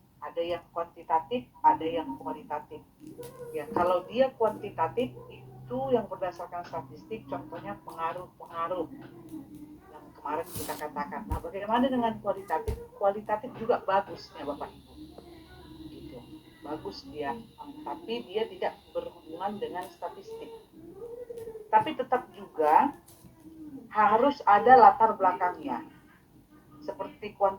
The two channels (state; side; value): identical; both; correlation 1.00